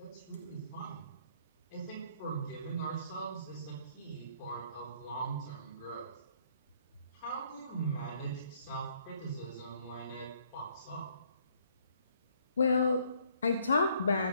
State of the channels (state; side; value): inverted; both; correlation -0.65